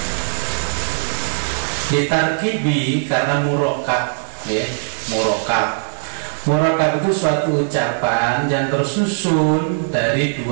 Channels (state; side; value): silent; left; 59 dB below the other